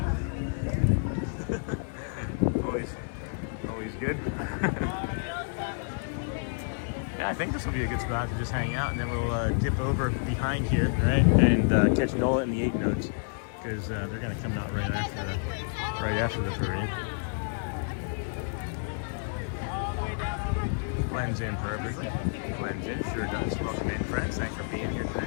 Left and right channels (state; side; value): silent; right; digital silence